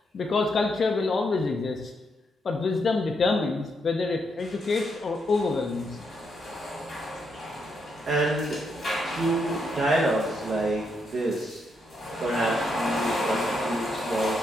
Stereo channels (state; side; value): normal; both; correlation 0.79